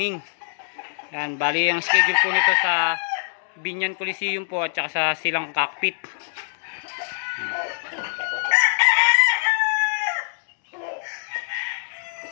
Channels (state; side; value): silent; right; digital silence